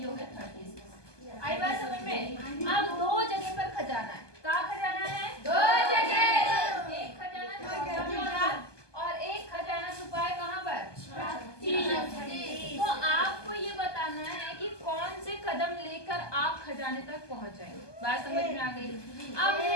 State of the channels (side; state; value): right; late; 1.2 ms